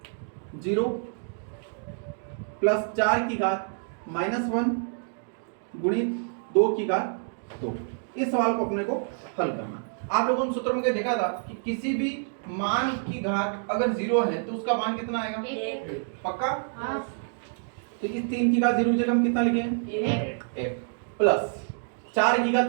0 प्लस 4 की घात -1 गुणित 2 की घात 2। इस सवाल को अपने को हल करना। आप लोगों ने सूत्र में क्या देखा था कि किसी भी मान की घात अगर 0 है तो उसका मान कितना आएगा, 1। पक्का। हाँ। तो इस 3 की घात 0 जगह हम कितना लिखें, 1 प्लस 4 की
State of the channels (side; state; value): left; silent; digital silence